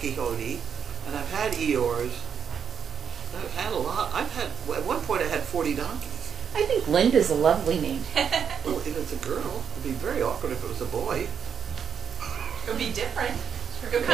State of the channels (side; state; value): left; quieter; 7.4 dB